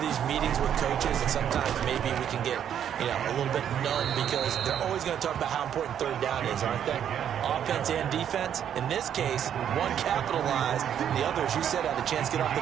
these meetings with coaches, and sometimes maybe we can get, a little bit numb because they're always going to talk about how important 3rd down is, aren't they? Offense and defense. In this case, one capitalized, the other, as you said, had a chance to get off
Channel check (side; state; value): left; quieter; 9.3 dB